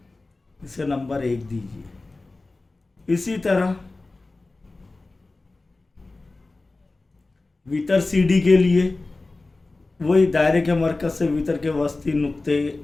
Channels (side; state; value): right; quieter; 3.3 dB